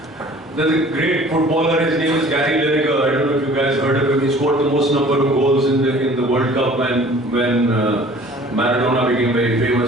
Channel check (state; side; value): normal; both; correlation 0.49